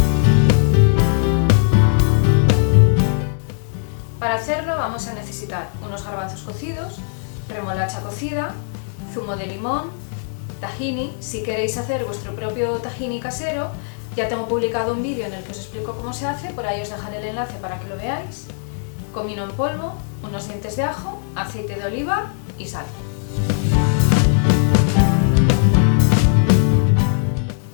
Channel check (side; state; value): right; silent; digital silence